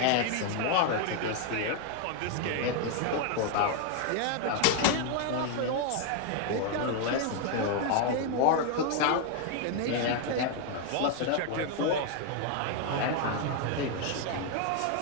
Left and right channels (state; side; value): different; both; correlation 0.00